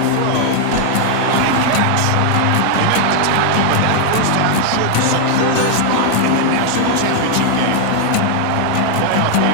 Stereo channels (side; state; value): both; different; correlation 0.00